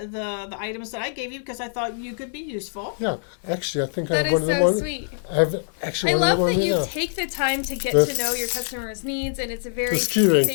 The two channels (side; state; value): right; silent; digital silence